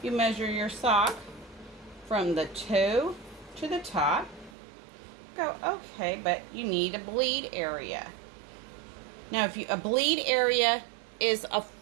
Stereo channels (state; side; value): drops out; left; at 4.5 s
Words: you measure your sock from the toe to the top. Go, okay, but you need a bleed area. Now, if a bleed area is a